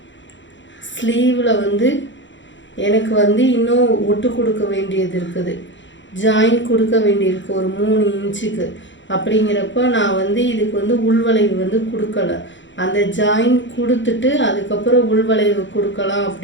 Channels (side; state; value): right; late; 0.54 ms